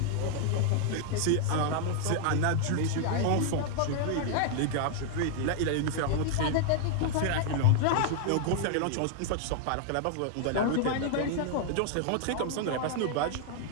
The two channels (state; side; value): different; both; correlation 0.00